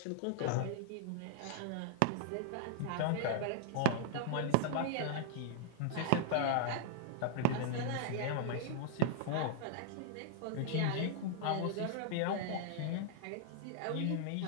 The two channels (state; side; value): different; both; correlation -0.01